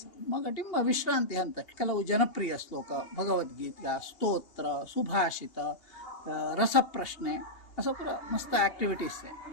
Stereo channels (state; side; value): late; right; 2.8 ms